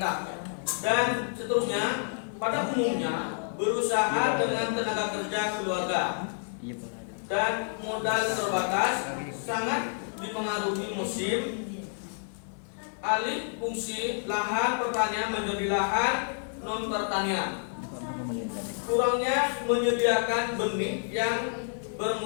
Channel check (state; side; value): silent; right; digital silence